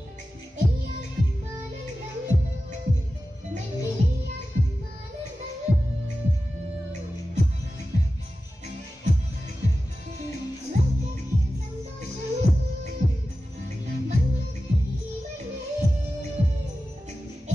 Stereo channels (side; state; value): both; normal; correlation 0.94